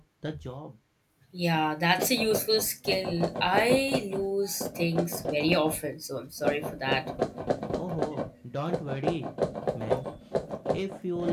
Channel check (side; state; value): both; identical; correlation 1.00